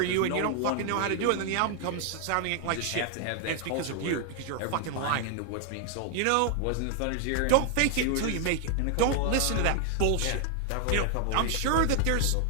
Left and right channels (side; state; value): both; different; correlation 0.00